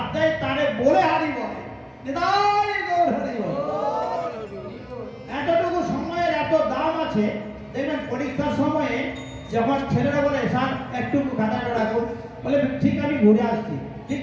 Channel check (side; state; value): both; identical; correlation 1.00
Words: দেয় তারে বলে হারিব, এতটুকু সময়ের এত দাম আছে। দেখবেন পরীক্ষার সময়ে যখন ছেলেরা বলে স্যার একটু খাতাটা রাখুন, বলে ঠিক আমি ঘুরে আসছি, ঠিক